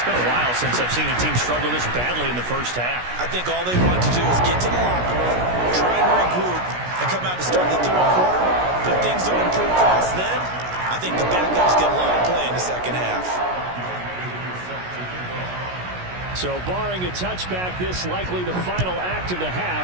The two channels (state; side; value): late; left; 16 ms